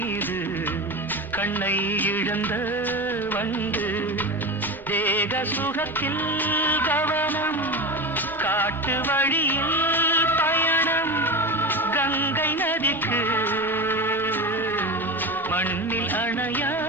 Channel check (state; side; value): normal; both; correlation 0.24